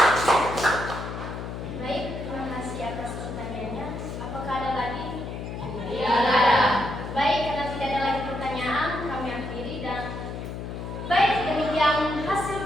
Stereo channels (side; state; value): left; noise; hum, 7 dB below the sound